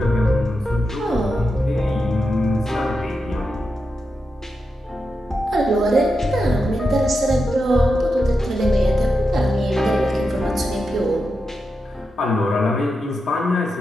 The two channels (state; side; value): normal; both; correlation 0.88